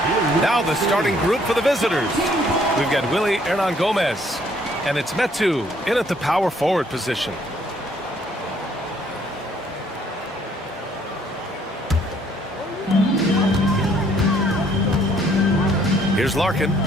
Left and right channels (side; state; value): both; normal; correlation 0.64